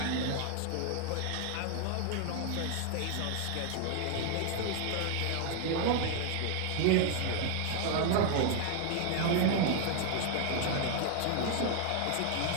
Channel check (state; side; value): different; both; correlation 0.00